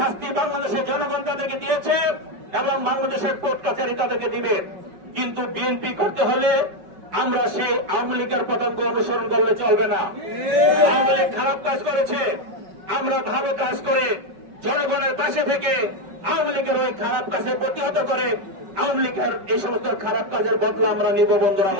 বাংলাদেশের জনগণ তাদেরকে দিয়েছে এবং বাংলাদেশের কোর্ট কাছারি তাদেরকে দিবে। কিন্তু বিএনপি করতে হলে আমরা সেই আওয়ামী লীগের পতঙ্গ অনুসরণ করলে চলবে না। আওয়ামী লীগ খারাপ কাজ করেছে, আমরা ভালো কাজ করে জনগণের পাশে থেকে আওয়ামী লীগের ওই খারাপ কাজে প্রতিহত করে আওয়ামী লীগের এই সমস্ত খারাপ কাজের বদলা আমরা নিব। বন্ধুরা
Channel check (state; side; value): late; left; 5.4 ms